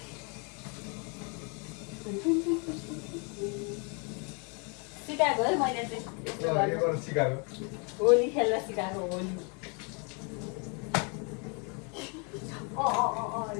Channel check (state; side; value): quieter; right; 34.7 dB